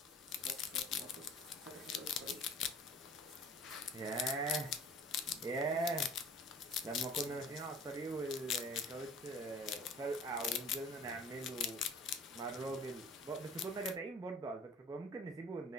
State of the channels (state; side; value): normal; both; correlation 0.47